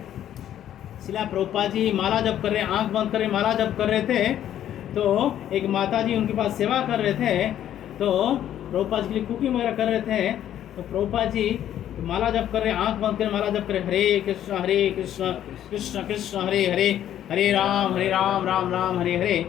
शिला प्रभुपाद जी माला जप कर रहे, आंख बंद कर माला जप कर रहे थे, तो एक माता जी उनके पास सेवा कर रहे थे, तो प्रभुपाद जी के लिए कुकिंग वगैरह कर रहे थे, तो प्रभुपाद जी माला जप कर रहे, आंख बंद कर माला जप कर रहे, हरे कृष्ण कृष्ण कृष्ण हरे हरे, हरे राम राम राम हरे हरे।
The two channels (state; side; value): quieter; right; 11.2 dB